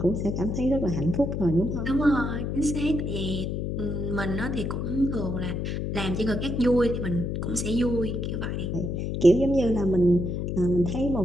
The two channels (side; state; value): left; noise; hum, 2 dB below the sound